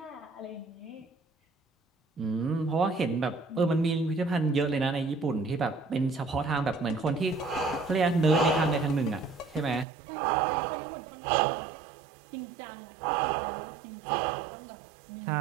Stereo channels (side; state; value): left; drops out; at 9.9 s